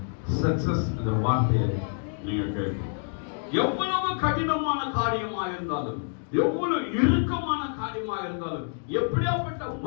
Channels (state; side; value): silent; right; 60 dB below the other